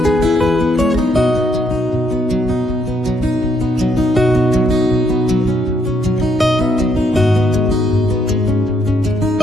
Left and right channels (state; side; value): normal; both; correlation 0.73